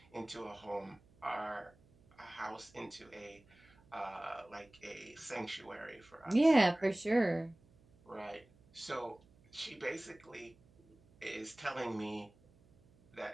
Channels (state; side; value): noise; right; hum, 28 dB below the sound